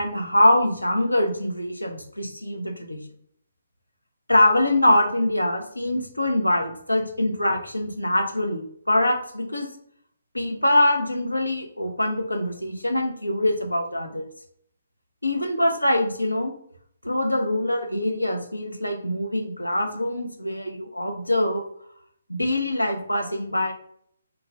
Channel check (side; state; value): both; inverted; correlation -0.90